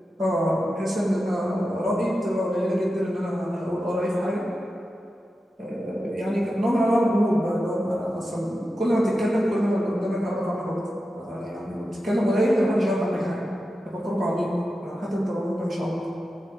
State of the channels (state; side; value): normal; both; correlation 0.91